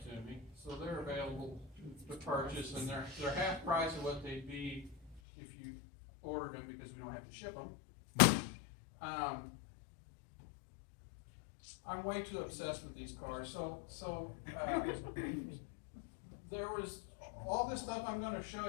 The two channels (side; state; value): right; drops out; at 5.2 s